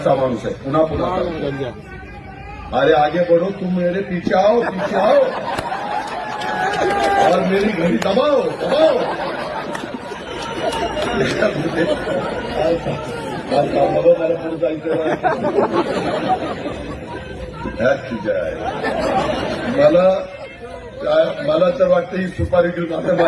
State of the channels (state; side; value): identical; both; correlation 1.00